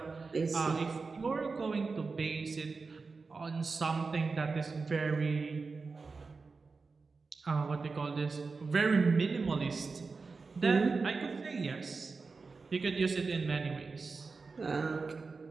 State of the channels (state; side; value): quieter; left; 4.4 dB